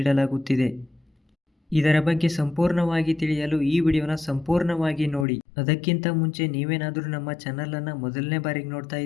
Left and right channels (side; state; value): right; drops out; at 5.2 s